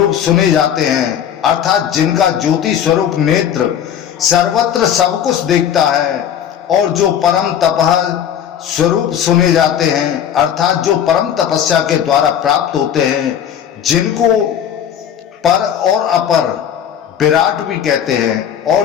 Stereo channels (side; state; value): right; quieter; 9.2 dB